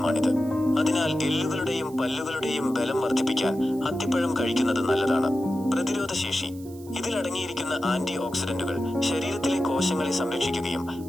അതിനാൽ എല്ലുകളുടെയും പല്ലുകളുടെയും ബലം വർദ്ധിപ്പിക്കാൻ അത്തിപ്പഴം കഴിക്കുന്നത് നല്ലതാണ്. പ്രതിരോധശേഷി. ഇതിലടങ്ങിയിരിക്കുന്ന ആന്റി ഓക്സിഡന്റുകൾ ശരീരത്തിലെ കോശങ്ങളെ സംരക്ഷിക്കുകയും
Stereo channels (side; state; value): right; noise; hiss, 22 dB below the sound